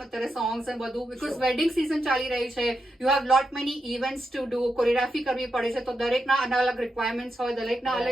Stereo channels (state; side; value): normal; both; correlation 0.85